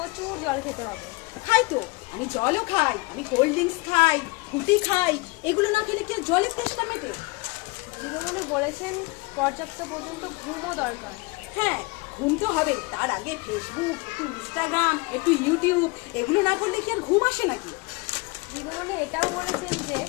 জল খেতে হবে। খাই তো, আমি জলও খাই, আমি কোল্ড ড্রিঙ্কস খাই, ফুটি খাই, এগুলো না খেলে কি আর জলের তেষ্টা মেটে? দিদিমণি বলেছেন পর্যাপ্ত পর্যন্ত ঘুমও দরকার। হ্যাঁ, ঘুম তো হবে, তার আগে ফেসবুক, একটু ইনস্টাগ্রাম, একটু ইউটিউব, এগুলো না করলে কি আর ঘুম আসে নাকি? দিদিমণি এটাও বলেছেন যে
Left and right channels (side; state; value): right; quieter; 25.5 dB